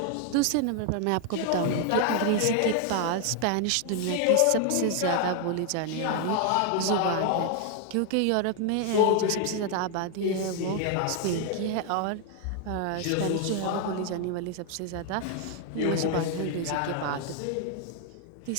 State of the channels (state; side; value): different; both; correlation 0.00